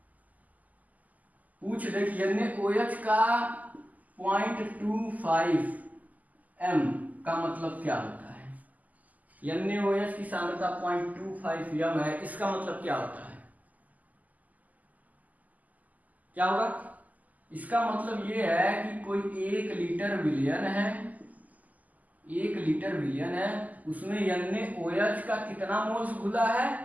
पूछ दे कि NaOH का 0.25 m का मतलब क्या होता है। NaOH की सांद्रता 0.25 m है, इसका मतलब क्या होता है, क्या होगा? इसका मतलब ये है कि कोई 1 लीटर विलयन है, 1 लीटर विलयन है, उसमें NaOH का कितना मोल्स घुला है,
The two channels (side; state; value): left; late; 0.079 ms